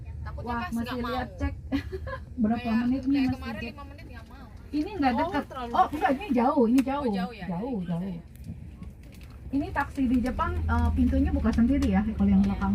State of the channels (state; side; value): identical; both; correlation 1.00